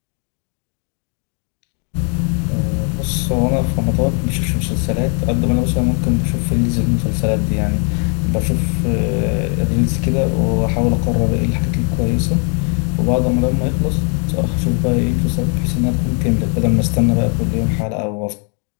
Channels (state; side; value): quieter; right; 39.1 dB